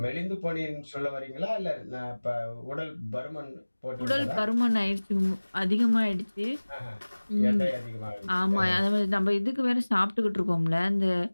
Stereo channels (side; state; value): both; inverted; correlation -1.00